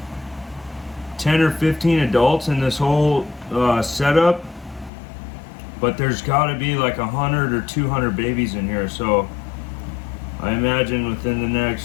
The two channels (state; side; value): drops out; right; at 4.9 s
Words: 10 or 15 adults in this whole setup, but there's got to be like 100 or 200 babies in here. So I imagine within the